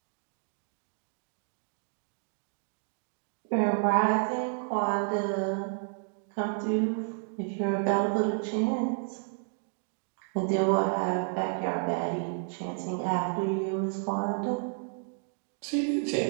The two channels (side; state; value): left; silent; 57 dB below the other